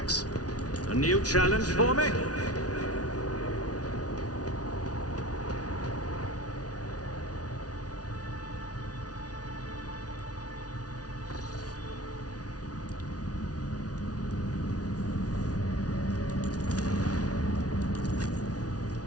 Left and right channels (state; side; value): late; right; 0.68 ms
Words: A new challenge for me?